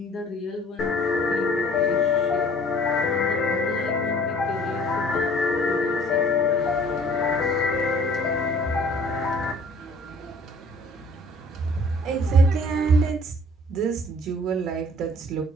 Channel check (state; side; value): normal; both; correlation 0.53